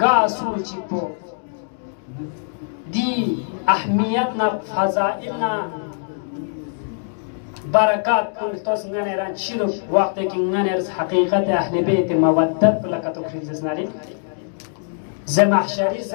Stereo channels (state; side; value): silent; right; digital silence